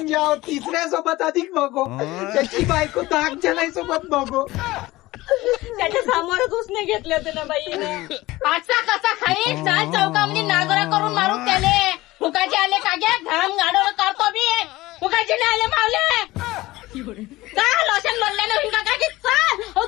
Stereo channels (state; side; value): quieter; right; 18.8 dB